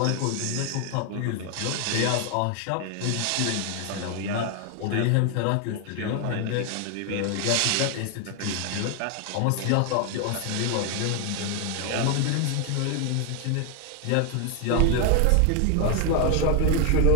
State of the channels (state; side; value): different; both; correlation 0.00